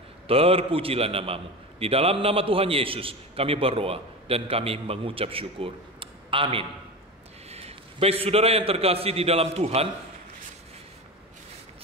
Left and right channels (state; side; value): normal; both; correlation 0.26